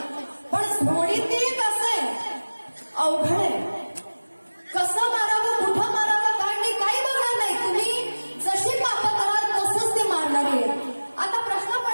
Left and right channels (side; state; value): both; inverted; correlation -1.00